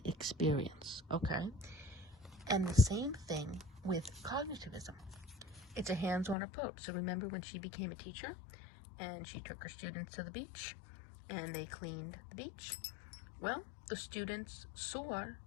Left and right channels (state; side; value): drops out; right; at 6.4 s